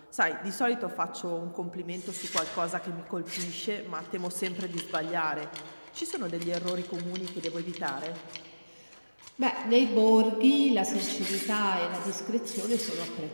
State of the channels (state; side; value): inverted; both; correlation -1.00